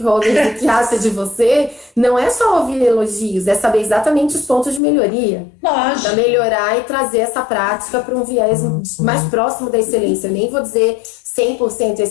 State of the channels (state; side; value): drops out; right; at 4.8 s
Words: o que acha de você não é só ouvir elogios, é saber exatamente os pontos de melhoria. Lógico. Para melhorar e trazer essa prática para um viés mais próximo da excelência. Eu nem vou dizer 100%